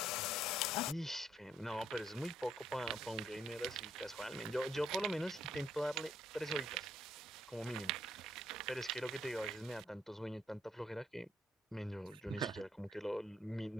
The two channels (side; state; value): both; normal; correlation 0.71